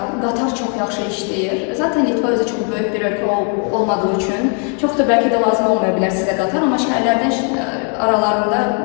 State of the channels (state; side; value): quieter; right; 39.8 dB